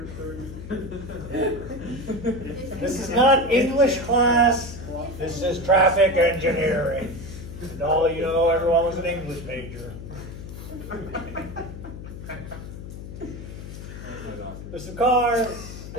30. This is not English class. This is traffic engineering. And all you know, everyone was an English major. There's some cars,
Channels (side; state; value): left; noise; hum, 11 dB below the sound